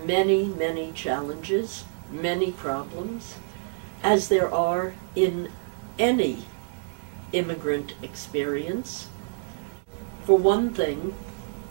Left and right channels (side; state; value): left; silent; digital silence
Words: many, many challenges, many problems, as there are in any immigrant experience. For one thing,